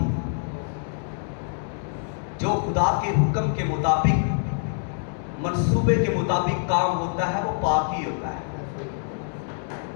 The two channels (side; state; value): right; silent; 61 dB below the other